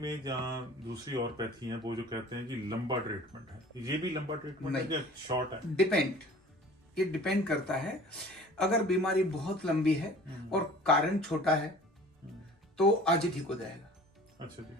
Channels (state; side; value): normal; both; correlation 0.45